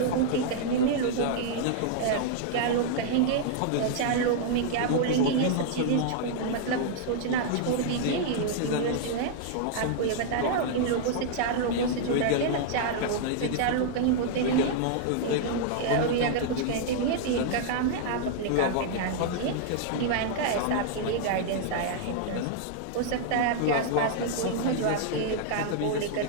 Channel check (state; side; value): different; both; correlation -0.01